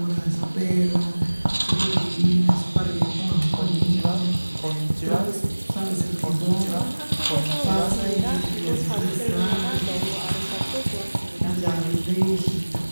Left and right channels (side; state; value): both; inverted; correlation -1.00